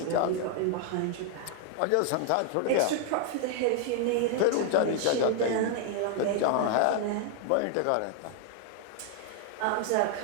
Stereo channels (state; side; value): different; both; correlation 0.00